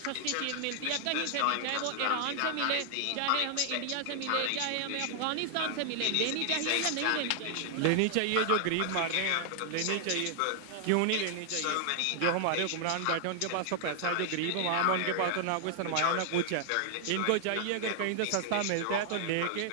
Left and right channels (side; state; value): both; different; correlation -0.01